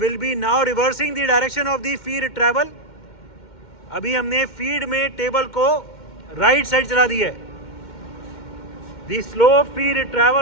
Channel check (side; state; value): right; late; 2.1 ms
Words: be now reversing the direction of the feed travel. अभी हमने फीड में टेबल को राइट साइड चला दिया है. The slow feed